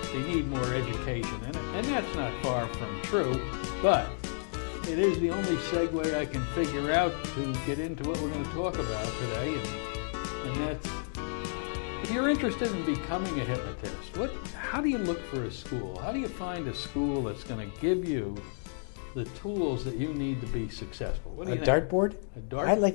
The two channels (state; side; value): silent; right; digital silence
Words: need more education, and that's not far from true. But it is the only segue I can figure out to get into what we're going to talk about today, and that's, if you're interested in becoming a hypnotist, how do you look for a school? How do you find a school that's going to give you the tools that you need to be successful? What do you think? A dartboard? A dart? I'd